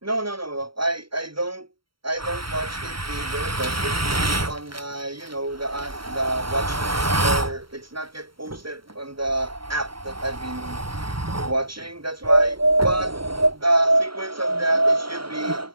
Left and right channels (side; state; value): left; late; 0.74 ms